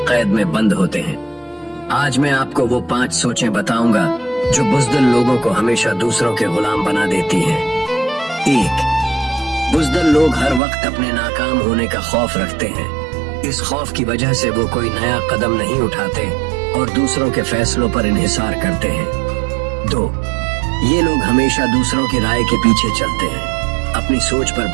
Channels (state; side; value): drops out; left; at 10.6 s